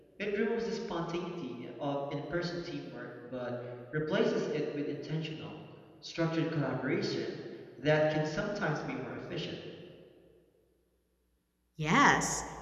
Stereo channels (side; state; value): both; identical; correlation 1.00